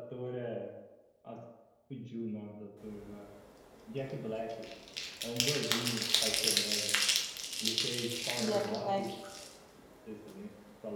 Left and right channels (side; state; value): both; identical; correlation 1.00